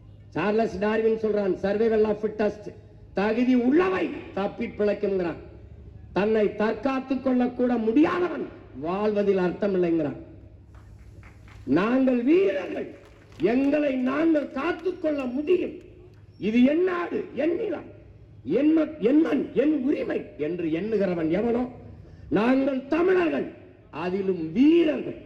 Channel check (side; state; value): both; identical; correlation 1.00